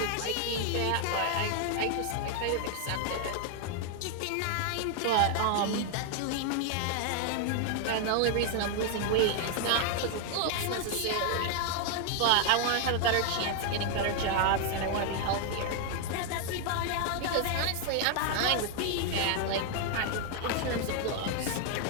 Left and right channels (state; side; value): different; both; correlation 0.00